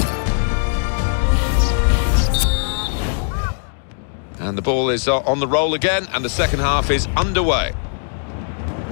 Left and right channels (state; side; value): silent; right; digital silence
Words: And the ball is on the roll again, and the second half is underway.